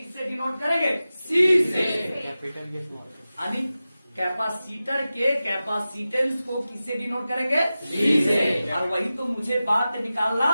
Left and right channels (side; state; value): both; inverted; correlation -0.95